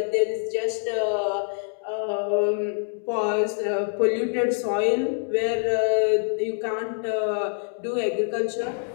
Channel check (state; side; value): silent; right; 61 dB below the other